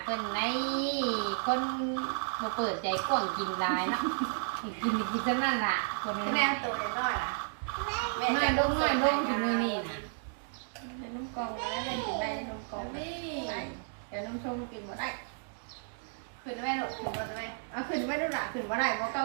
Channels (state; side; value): silent; left; digital silence